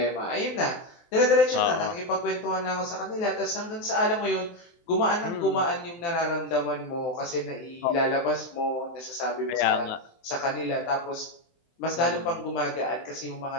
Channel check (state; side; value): late; right; 23 ms